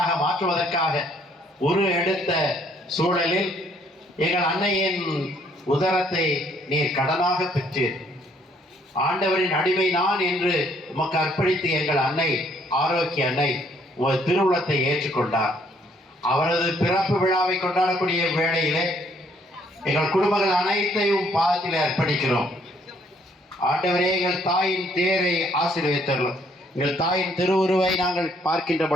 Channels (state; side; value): normal; both; correlation 0.66